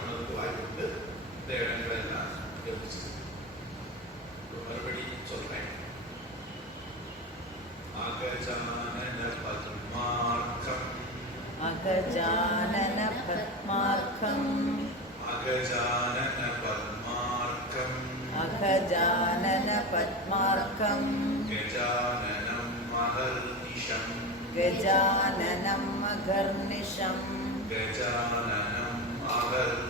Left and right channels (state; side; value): normal; both; correlation 0.22